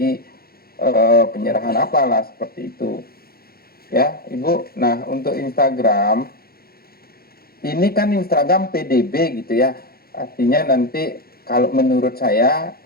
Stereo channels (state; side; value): late; right; 0.44 ms